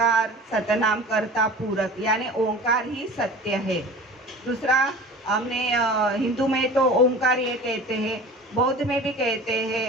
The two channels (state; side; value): normal; both; correlation 0.39